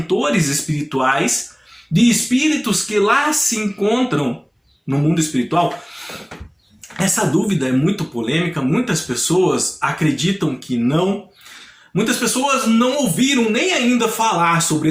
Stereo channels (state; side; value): identical; both; correlation 1.00